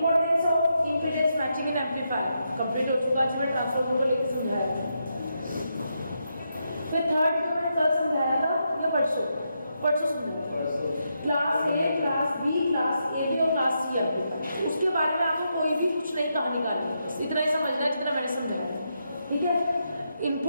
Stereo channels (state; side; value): inverted; both; correlation -0.83